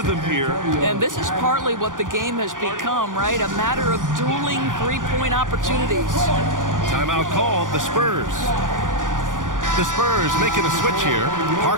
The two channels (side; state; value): left; late; 0.88 ms